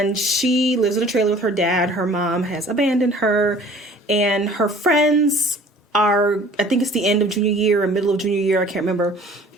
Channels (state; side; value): normal; both; correlation 0.50